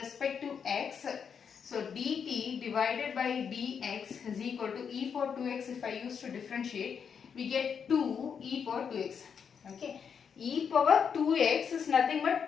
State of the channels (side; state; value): right; quieter; 6.9 dB